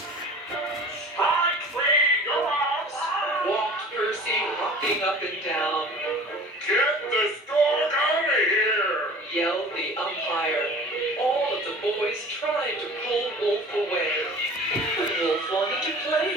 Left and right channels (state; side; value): normal; both; correlation 0.42